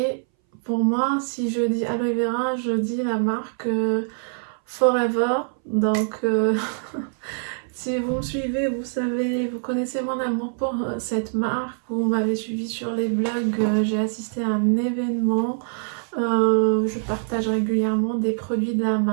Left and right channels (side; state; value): left; silent; 61 dB below the other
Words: pour moi, si je dis aloe vera, je dis la marque Forever. Donc si vous me suivez, vous savez, vous connaissez mon amour pour cette marque. Vous m'avez suivi sur les blogs, j'ai assisté à un événement. Je partage régulièrement des produits de la